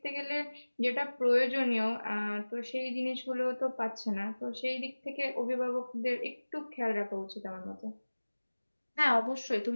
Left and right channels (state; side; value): inverted; both; correlation -1.00